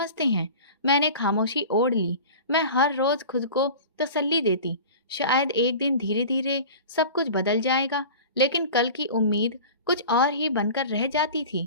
हैं। मैंने खामोशी ओढ़ ली। मैं हर रोज खुद को तसल्ली देती, शायद एक दिन धीरे धीरे सब कुछ बदल जाएगा, लेकिन कल की उम्मीद कुछ और ही बनकर रह जाती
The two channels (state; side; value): inverted; both; correlation -0.37